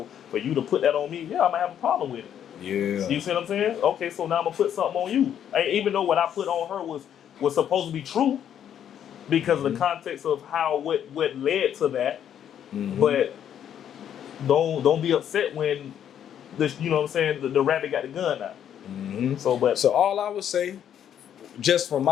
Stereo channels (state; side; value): quieter; right; 9.5 dB